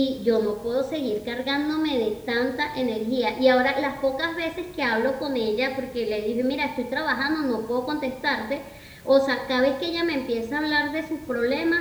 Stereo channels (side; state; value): both; identical; correlation 1.00